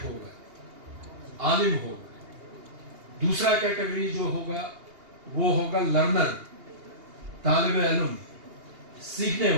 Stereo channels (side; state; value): left; late; 2.8 ms